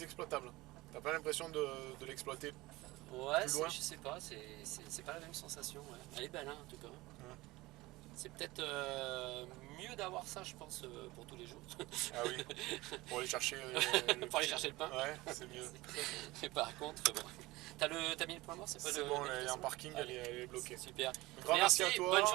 exploitable. T'as pas l'impression de l'exploiter. Ouais, plus loin. je sais pas, c'est pas la même sensation. Ouais. Elle est belle hein, en tout cas. Ouais. C'est peut-être mieux d'avoir ça, je pense, pour tous les jours. Ah oui, pour aller chercher Pour aller chercher le pain. Ouais, c'est mieux. Mais par contre, bon. T'as mis le point mort, c'est pas C'est bon, elle est en parking, elle est bloquée. Super. Un grand merci à toi. Bonne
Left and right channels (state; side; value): quieter; left; 20.2 dB